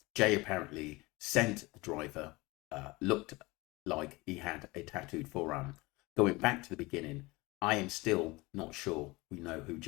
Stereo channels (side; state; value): right; quieter; 23.0 dB